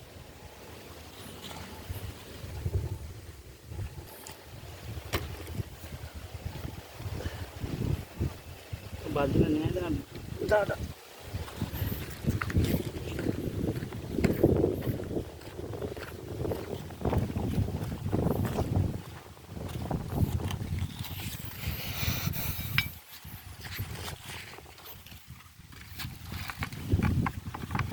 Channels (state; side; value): identical; both; correlation 1.00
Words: বাজনা নিয়ে দাদা